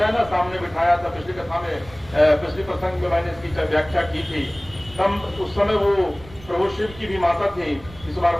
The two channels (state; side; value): noise; right; rumble, 19 dB below the sound